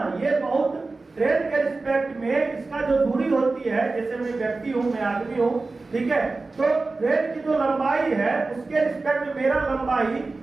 ये बहुत ट्रेन के रिस्पेक्ट में इसका जो दूरी होती है, जैसे मैं व्यक्ति हूँ, मैं आदमी हूँ, ठीक है, तो ट्रेन की जो लंबाई है उसके रिस्पेक्ट में मेरा लंबाई,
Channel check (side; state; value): left; quieter; 3.6 dB